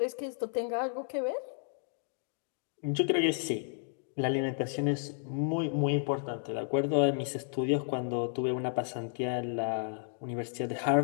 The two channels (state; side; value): silent; right; digital silence